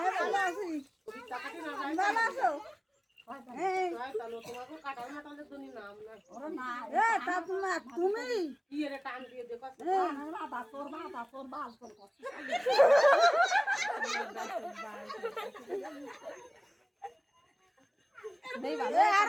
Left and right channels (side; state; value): both; identical; correlation 1.00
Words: ভালো আছি ওই টাকাটি না যায় ভালো আছো তাহলে তোমাকে কাটাল মাটালের জন্য নাম না ওরে না তা তুমি কি এর টান দিয়ে দেখো বাবা তোর বাল তোর